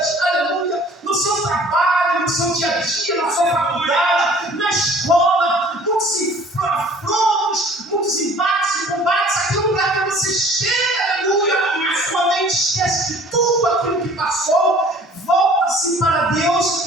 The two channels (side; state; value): both; normal; correlation 0.51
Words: aleluia, no seu trabalho, no seu dia a dia, na sua faculdade, na escola, muitos afrontos, muitos embates e combates. Aqui é o lugar onde você chega, aleluia, a sua mente esquece de tudo aquilo que passou, volta-se para